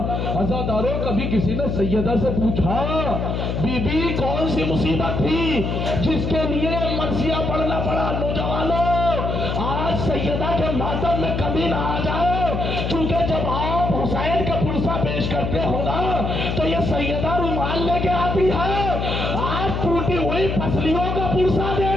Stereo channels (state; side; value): noise; left; hum, 1 dB below the sound